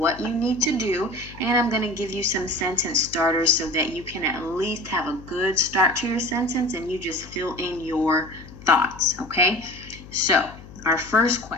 you need to do, and I'm going to give you some sentence starters so that you can at least have a good start to your sentence and you just fill in your thoughts, okay? So, our first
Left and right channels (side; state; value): left; noise; hum, 17 dB below the sound